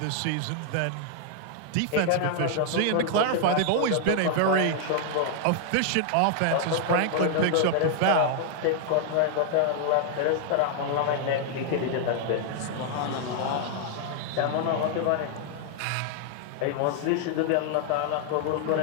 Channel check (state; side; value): different; both; correlation 0.00